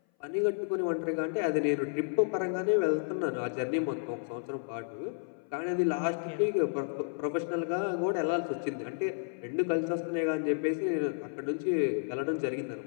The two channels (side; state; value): right; silent; 57 dB below the other